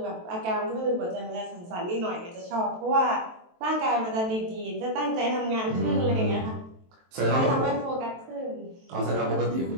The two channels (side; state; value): left; late; 23 ms